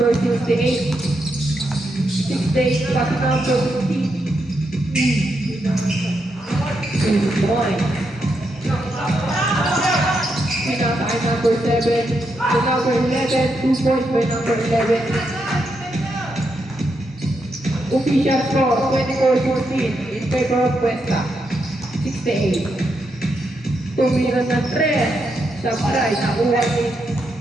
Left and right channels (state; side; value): normal; both; correlation 0.82